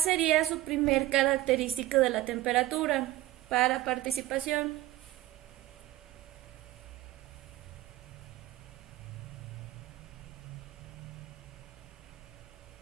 su primer característica de la temperatura para participación?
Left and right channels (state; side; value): quieter; left; 15.7 dB